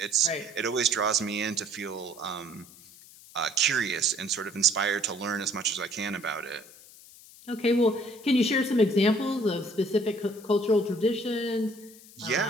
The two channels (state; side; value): noise; left; hiss, 21 dB below the sound